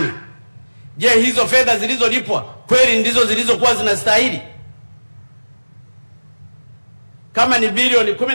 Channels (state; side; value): inverted; both; correlation -1.00